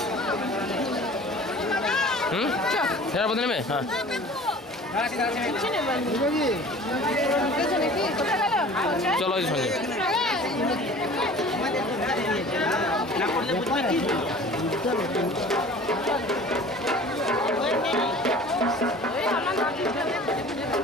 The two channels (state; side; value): normal; both; correlation 0.44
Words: ফেরার পথে নেবে? হ্যাঁ চলো ওই সঙ্গে।